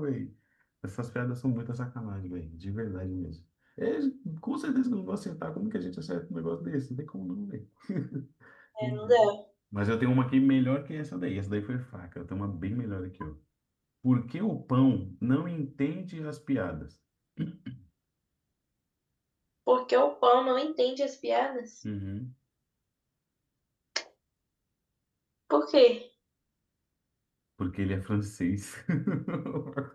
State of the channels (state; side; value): identical; both; correlation 1.00